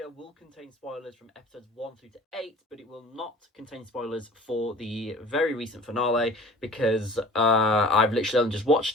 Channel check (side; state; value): both; normal; correlation 0.45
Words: will contain spoilers from episodes 1 through to 8, but it will not contain spoilers for the very recent finale because I've literally just watched